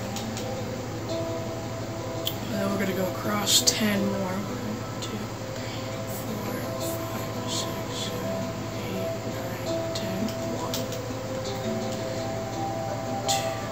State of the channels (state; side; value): identical; both; correlation 1.00